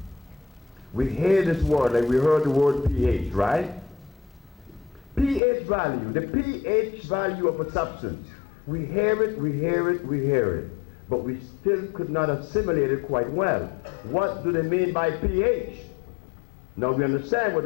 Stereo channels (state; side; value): drops out; right; at 5.4 s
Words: We hear this word, like we heard the word pH, right? pH value, the pH value of a substance. We hear it, we hear it, we hear it, but we still could not assimilate it quite well. What do they mean by pH? Now we understand what